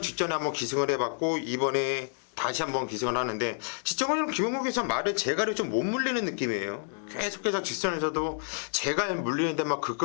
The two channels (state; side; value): silent; right; digital silence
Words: 직전에 한번 기승을 해봤고, 이번에 다시 한번 기승을 하는데, 직전에는 김용근 기수 말을 제갈이 좀 못 물리는 느낌이에요. 계속해서 직선에서도 제갈 물리는 데만